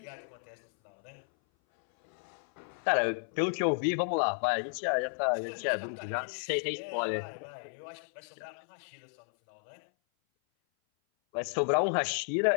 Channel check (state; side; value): silent; right; 56 dB below the other